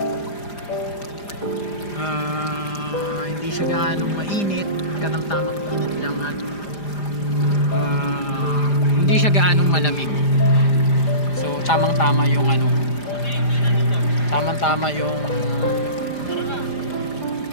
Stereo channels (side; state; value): right; late; 5.0 ms